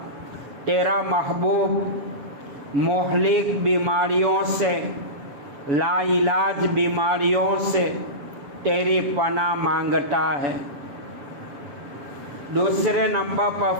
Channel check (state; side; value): late; left; 7.0 ms